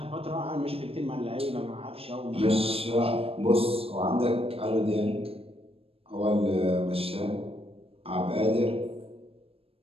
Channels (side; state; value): left; late; 0.28 ms